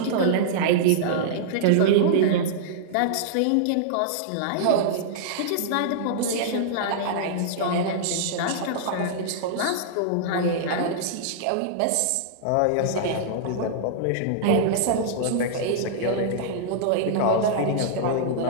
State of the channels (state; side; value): different; both; correlation -0.02